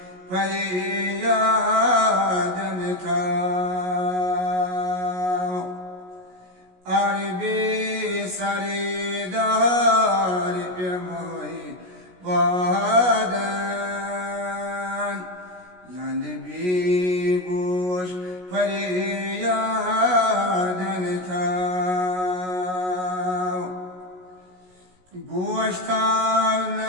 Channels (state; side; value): late; left; 16 ms